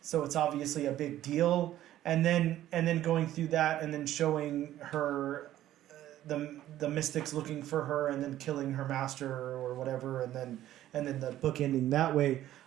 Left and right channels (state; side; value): quieter; left; 13.2 dB